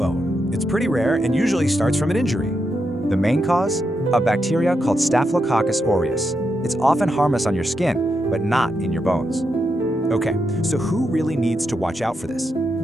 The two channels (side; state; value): both; normal; correlation 0.84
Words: It's pretty rare and usually starts from an injury. The main cause? A bacteria called Staphylococcus aureus. It's often harmless on your skin, but not in your bones. Okay, so who really needs to watch out for this?